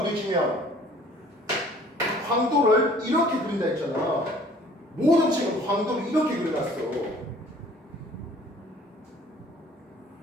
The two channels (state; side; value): normal; both; correlation 0.53